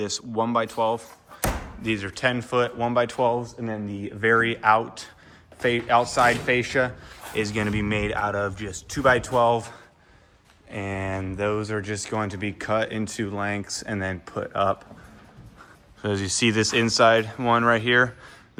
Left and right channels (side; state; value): both; identical; correlation 1.00